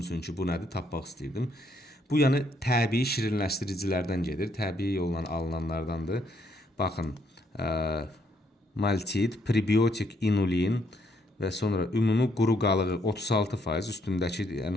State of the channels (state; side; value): normal; both; correlation 0.72